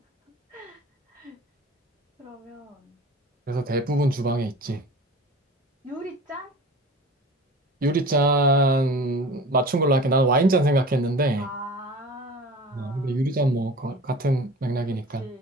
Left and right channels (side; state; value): both; normal; correlation 0.39